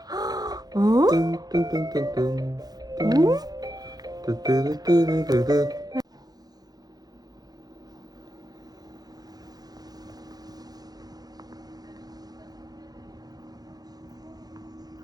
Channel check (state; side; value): late; left; 0.19 ms